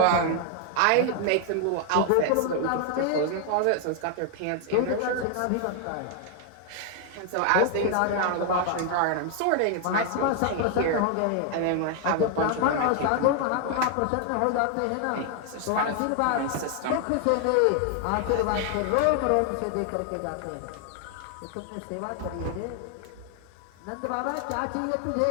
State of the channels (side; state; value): both; different; correlation 0.00